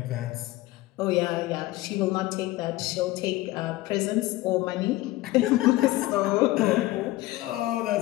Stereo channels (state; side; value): quieter; right; 18.1 dB